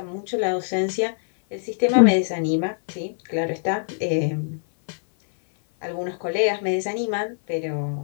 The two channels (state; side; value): silent; right; 57 dB below the other